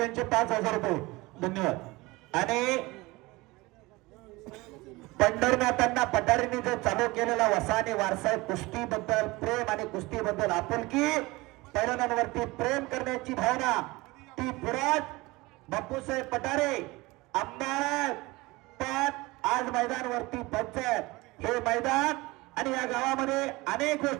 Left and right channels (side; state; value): left; quieter; 22.0 dB